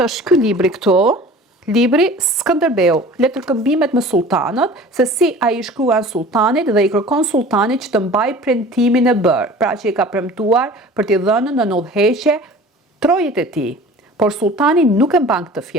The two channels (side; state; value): both; normal; correlation 0.43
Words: është ky libri këtu. Libri Skënderbeu, letërkëmbimet me sultanët, se si ai i shkruan sultanit dhe i kërkon sultanit që të mbaj premtimin e bërë, pra që i ka premtuar për t'i dhënë në udhëheqje trojët e tij. Por sultani nuk e mban këtë